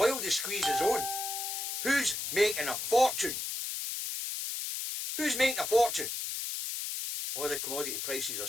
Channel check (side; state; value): left; noise; hiss, 4 dB below the sound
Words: the squeeze is on, who's making a fortune? Who's making a fortune? Well, the commodity prices are